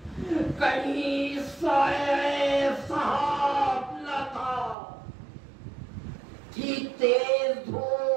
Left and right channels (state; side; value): drops out; left; at 4.8 s